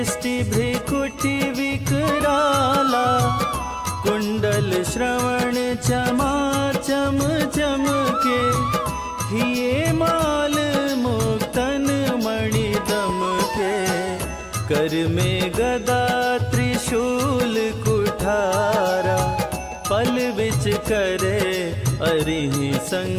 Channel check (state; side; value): identical; both; correlation 1.00